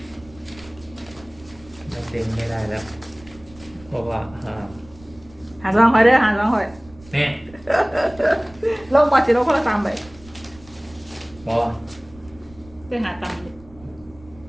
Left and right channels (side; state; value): right; noise; rumble, 23 dB below the sound